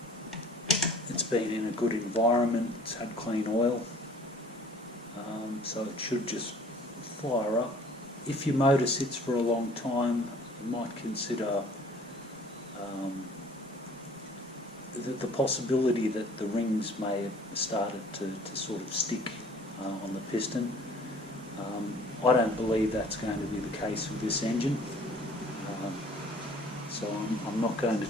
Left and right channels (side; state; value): both; normal; correlation 0.52